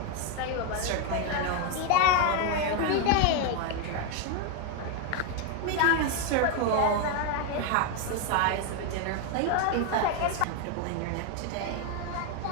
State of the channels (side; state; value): both; different; correlation 0.01